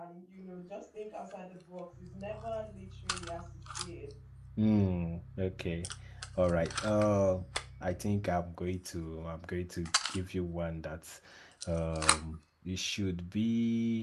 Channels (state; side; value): identical; both; correlation 1.00